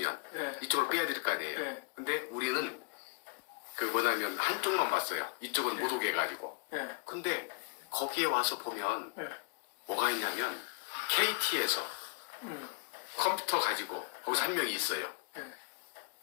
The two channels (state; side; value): quieter; right; 30.3 dB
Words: 이쪽으로 빼야 될 거 아니에요. 근데 우리는 한쪽만 봤어요. 이쪽은 못 오게 해가지고. 근데 거기에 와서 보면 뭐가 있냐면 KT에서 컴퓨터 가지고 거기서 한 명이 있어요.